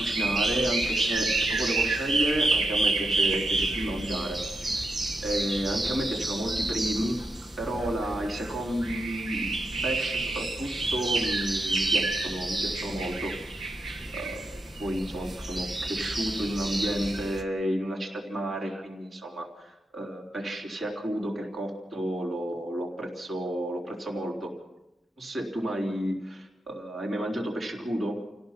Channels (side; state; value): both; normal; correlation 0.86